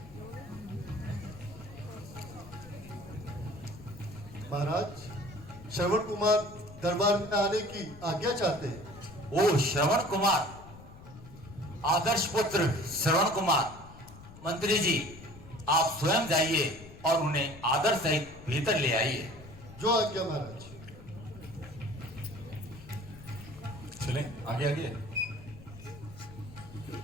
महाराज, श्रवण कुमार दरबार में आने की आज्ञा चाहते हैं। ओ श्रवण कुमार, आदर्श पुत्र श्रवण कुमार, मंत्री जी आप स्वयं जाइए और उन्हें आदर सहित भीतर ले आइए। जो आज्ञा महाराज। चलें आगे आगे।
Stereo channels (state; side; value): noise; left; rumble, 17 dB below the sound